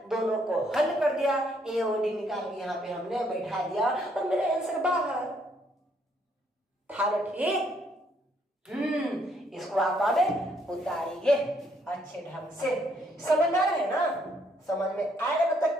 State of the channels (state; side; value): normal; both; correlation 0.70